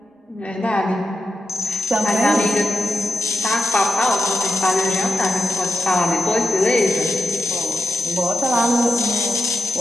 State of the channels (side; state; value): both; normal; correlation 0.87